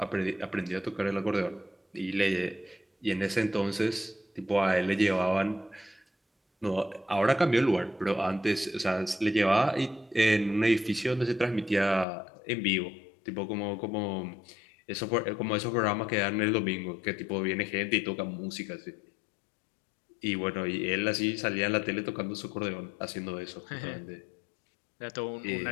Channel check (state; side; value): drops out; right; at 12.1 s